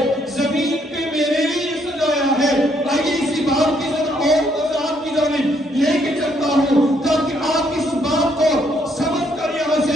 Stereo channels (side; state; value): both; normal; correlation 0.70